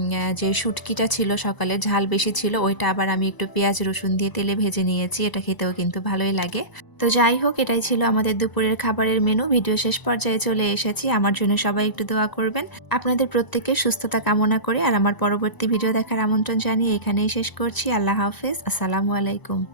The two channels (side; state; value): right; late; 1.0 ms